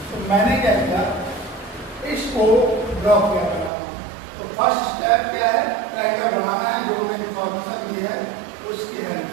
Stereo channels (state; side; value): drops out; left; at 3.7 s